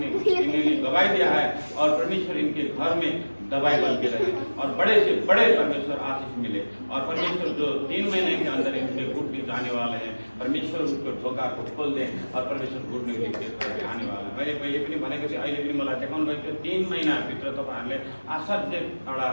इन्हें गवाही दिया है, और परमेश्वर इनके घर में दवाई बन के रहे और बड़े से बड़े परमेश्वर आशीष मिले। और परमेश्वर जो 3 महीने के अंदर इनके घुटने जाने वाले हैं, परमेश्वर उसको ढोका को खोल दें और परमेश्वर घुटने लेके आने वाला है। मैले पहिले पनि भनेको थिएँ, अहिले पनि मलाई देखाउनु भएको थियो। 3 महिनाभित्र तपाईँहरूले असाध्य एउटा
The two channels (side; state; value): both; inverted; correlation -1.00